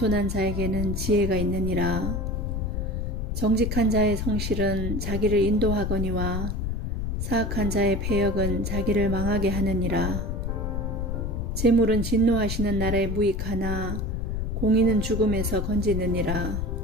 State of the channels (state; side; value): noise; left; rumble, 2 dB below the sound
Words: 자에게는 지혜가 있느니라. 정직한 자의 성실은 자기를 인도하거니와 사악한 자의 패역은 자기를 망하게 하느니라. 재물은 진노하시는 나라에 무익하나 공의는 죽음에서 건지느니라.